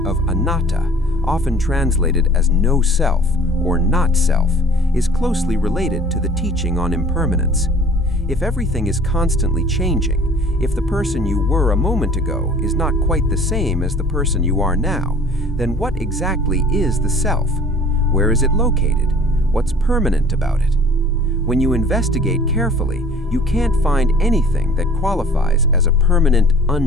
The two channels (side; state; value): both; normal; correlation 0.49